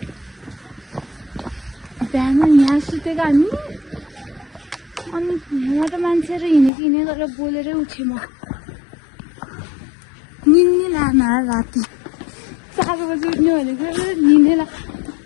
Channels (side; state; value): right; drops out; at 6.7 s